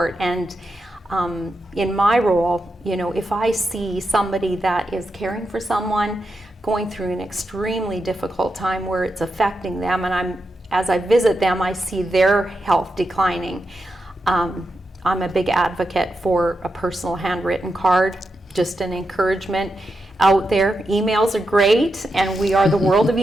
And in my role, you know, if I see somebody that is caring for someone going through an extremely difficult time where it's affecting them, and as I visit them, I see their health declining, I'm a big advocate for a personal handwritten card, just an encouragement out there. Emails are great, and we are the world of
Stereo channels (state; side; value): normal; both; correlation 0.86